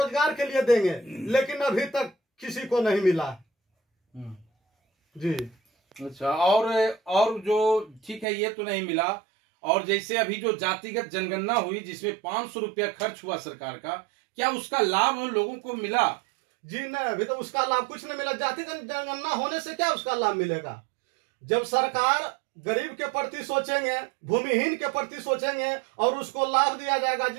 के लिए देंगे, लेकिन अभी तक किसी को नहीं मिला जी। अच्छा, और जो ठीक है, ये तो नहीं मिला। और जैसे अभी जो जातिगत जनगणना हुई, जिसमें 500 रुपया खर्च हुआ सरकार का, क्या उसका लाभ उन लोगों को मिला? जी नहीं, अभी तो उसका लाभ कुछ नहीं मिला। जातिगत जनगणना होने से क्या उसका लाभ मिलेगा? जब सरकार गरीब के प्रति सोचेंगे, भूमिहीन के प्रति सोचेंगे और उसको लाभ दिया जाएगा।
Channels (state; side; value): drops out; left; at 8.2 s